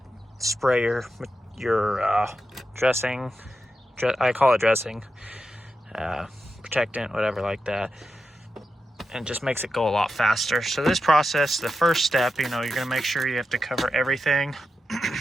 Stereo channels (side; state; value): both; normal; correlation 0.89